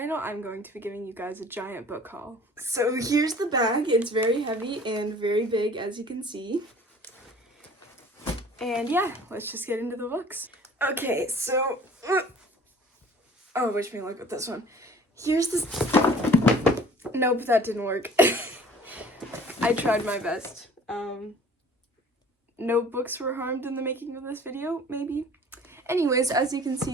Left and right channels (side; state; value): both; normal; correlation 0.49